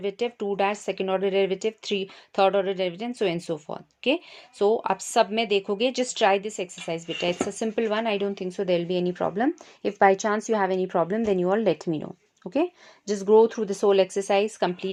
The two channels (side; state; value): both; identical; correlation 1.00